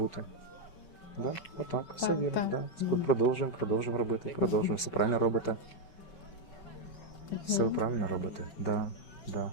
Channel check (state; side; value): late; right; 5.3 ms